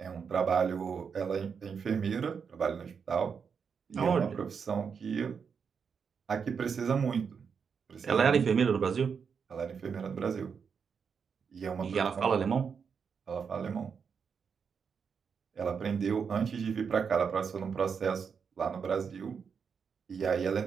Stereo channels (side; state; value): left; quieter; 6.3 dB